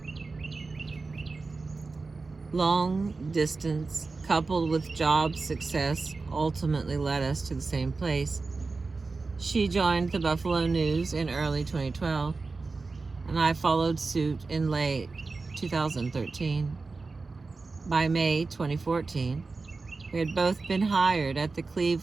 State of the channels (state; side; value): quieter; left; 3.9 dB